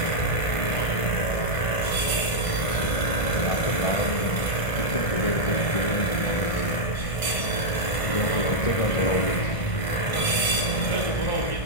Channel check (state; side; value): late; right; 1.6 ms